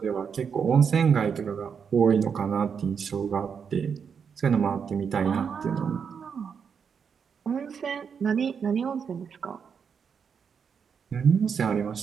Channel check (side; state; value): left; quieter; 6.7 dB